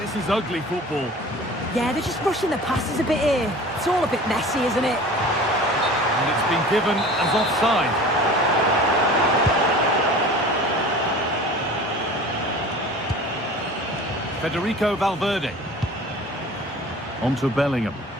is ugly football. Yeah, they're just rushing the passes a bit here. It's all a bit messy, isn't it? And it's been given as offside. Federico Valverde. On to Bellingham.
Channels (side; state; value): both; normal; correlation 0.41